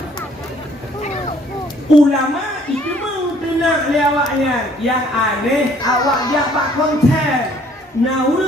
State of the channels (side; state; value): both; normal; correlation 0.60